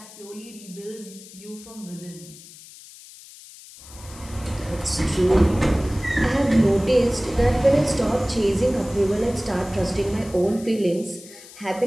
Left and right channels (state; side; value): noise; left; hiss, 19 dB below the sound